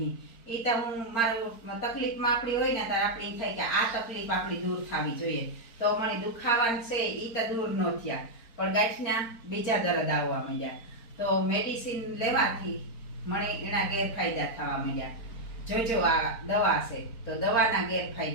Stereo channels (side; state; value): right; late; 4.3 ms